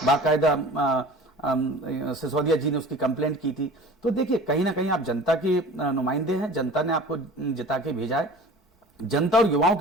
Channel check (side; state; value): both; normal; correlation 0.41